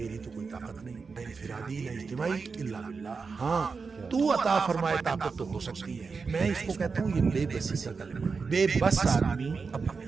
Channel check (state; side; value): quieter; left; 4.9 dB